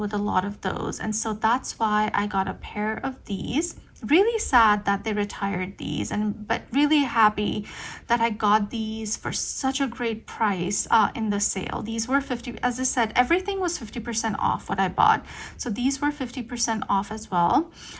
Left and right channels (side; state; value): both; identical; correlation 1.00